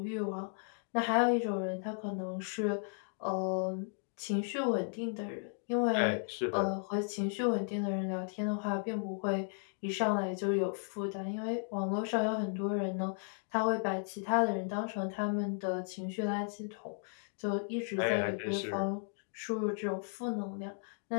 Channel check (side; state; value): right; silent; 54 dB below the other